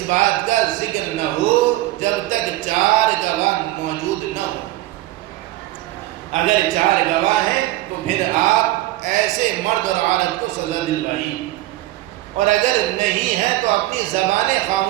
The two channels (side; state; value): left; quieter; 16.7 dB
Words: بات کا ذکر نہ ہو، جب تک 4 گواہ موجود نہ ہو، اگر 4 گواہ ہیں تو پھر آپ ایسے مرد اور عورت کو سزا دلوائیے، اور اگر نہیں ہے تو اپنی زبانیں